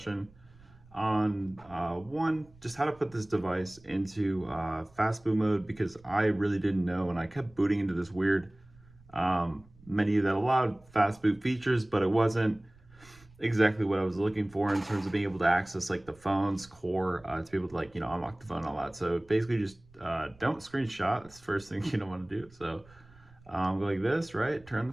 on one, just how to put this device into fast boot mode because I really didn't know, and I kept booting into this weird menu that allowed fast boot features, but it wasn't exactly what I was looking for in terms of being able to access like the phone's core to be able to unlock the phone and all that. So basically, just don't screenshot. That's the first thing you don't want to do. So go like this, right? Turn the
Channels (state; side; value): noise; right; rumble, 26 dB below the sound